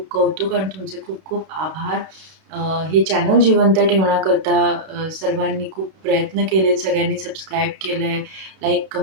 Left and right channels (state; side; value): late; left; 31 ms